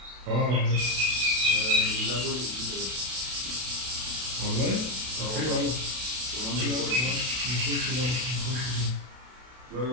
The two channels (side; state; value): left; late; 32 ms